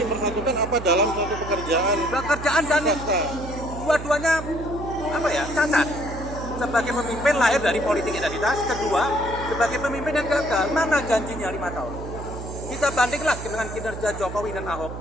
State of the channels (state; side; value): noise; right; hum, 9 dB below the sound